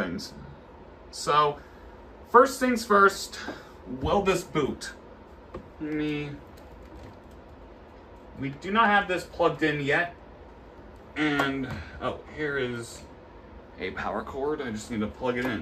So, first things first, will this boot? We do not have this plugged in yet, and oh, here is a power cord. I just need to plug it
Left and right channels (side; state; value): both; identical; correlation 1.00